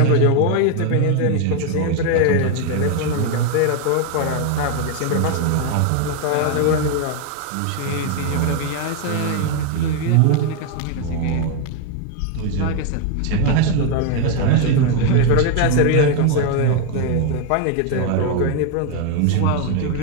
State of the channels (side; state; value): both; different; correlation 0.01